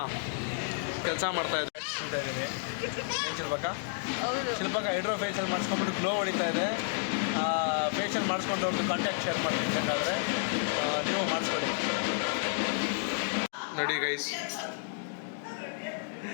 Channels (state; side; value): silent; right; digital silence